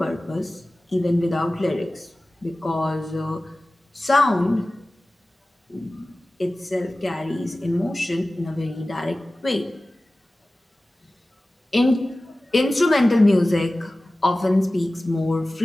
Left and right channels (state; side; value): normal; both; correlation 0.97